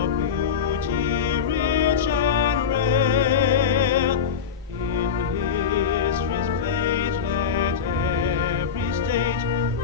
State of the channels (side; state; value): right; quieter; 6.6 dB